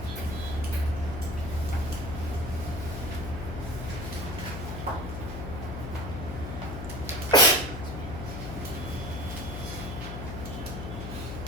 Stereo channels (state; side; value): noise; left; hum, 6 dB below the sound